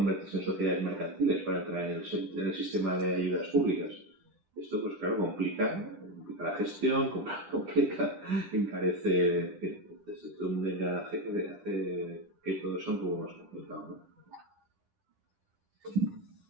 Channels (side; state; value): left; late; 9.8 ms